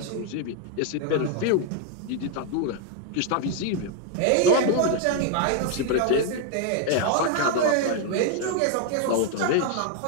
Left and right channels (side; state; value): both; different; correlation 0.00